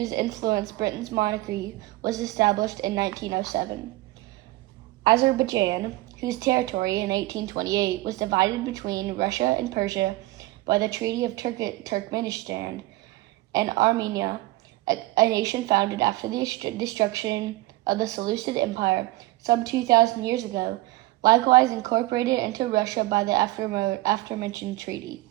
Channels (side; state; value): left; quieter; 19.0 dB